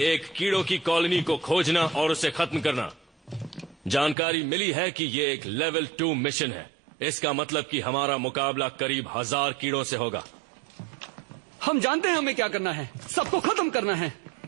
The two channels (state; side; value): drops out; left; at 4.2 s